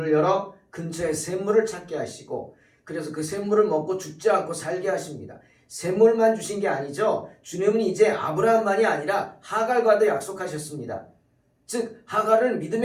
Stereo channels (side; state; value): both; identical; correlation 1.00